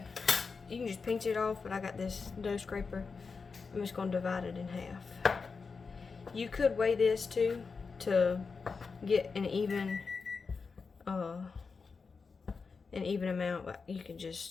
can just pinch it off, but I got this dough scraper. I'm just going to divide it in half. You could weigh this too to get an even amount, but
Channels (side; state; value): right; quieter; 4.9 dB